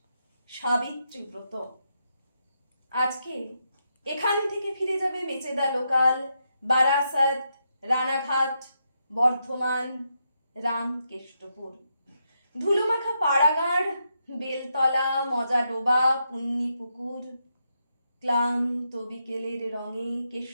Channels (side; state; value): both; inverted; correlation -0.82